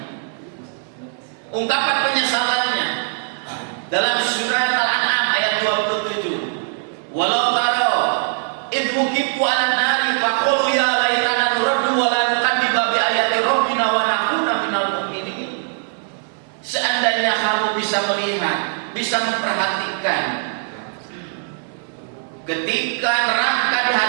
Ungkapan penyesalannya dalam surat Al-An'am ayat 27. Walau taro idh wuqifu 'alan nari faqulu ya laitana nuraddu wa la nukadziba bi ayati rabbina wa nakuna minal mu'minin. Seandainya kamu bisa melihat, bisa memperhatikan ketika neraka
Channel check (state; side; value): silent; left; digital silence